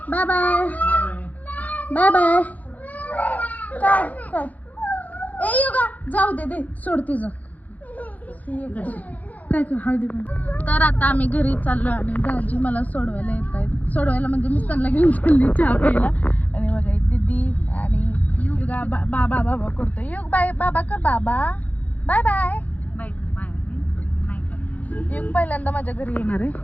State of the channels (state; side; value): late; right; 0.077 ms